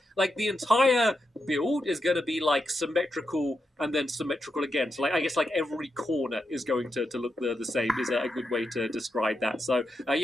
like the entire build is going to be like symmetrical and then symmetrical again. So like I guess like every corner is going to look the same is a good way to describe that. So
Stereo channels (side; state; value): both; normal; correlation 0.86